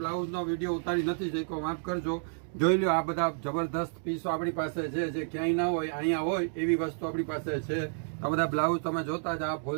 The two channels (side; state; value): left; silent; digital silence